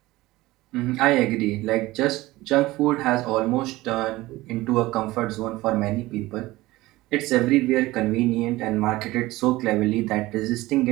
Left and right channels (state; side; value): quieter; left; 18.7 dB